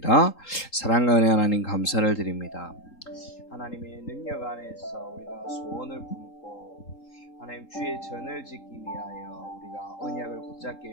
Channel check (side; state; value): right; late; 3.8 ms